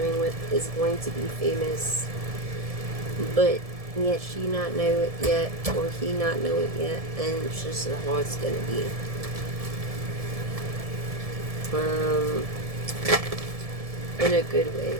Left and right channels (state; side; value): late; left; 1.7 ms